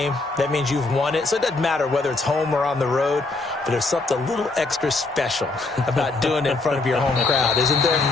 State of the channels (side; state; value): right; quieter; 3.4 dB